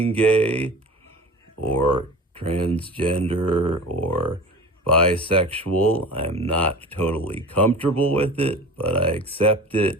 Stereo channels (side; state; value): both; normal; correlation 0.37